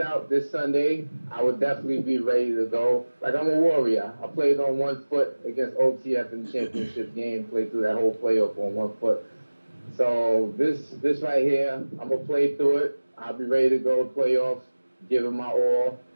out this Sunday. I would definitely be ready to go. Like, I'm a warrior. I played on 1 foot against OTF in the championship game, played through that whole playoff on 1 foot. So this right here, I'm going to play through it. I'll be ready to go to playoffs, give it my all,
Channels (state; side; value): inverted; both; correlation -1.00